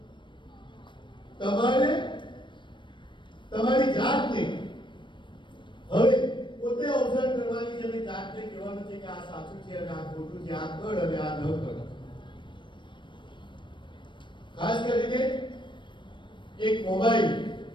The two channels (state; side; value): late; right; 0.23 ms